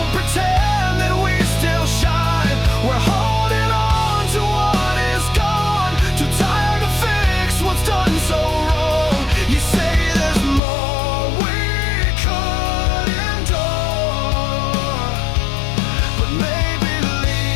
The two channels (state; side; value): drops out; right; at 10.6 s